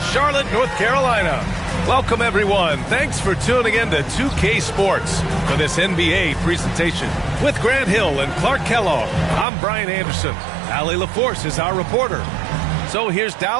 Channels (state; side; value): drops out; left; at 9.5 s